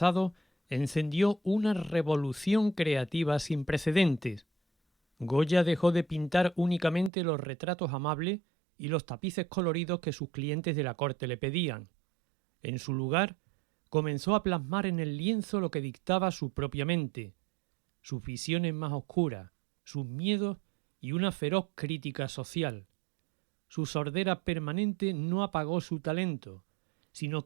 encendió una revolución creativa sin precedentes. Goya dejó de pintar únicamente los retratos amables y los tapices coloridos que sus clientes de la corte le pedían. En su lugar, comenzó a plasmar en el lienzo lo que dictaba su propia mente, sus visiones más oscuras, sus miedos y una feroz crítica social. Su sordera permanente no apagó su talento, sino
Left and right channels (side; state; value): left; drops out; at 7.1 s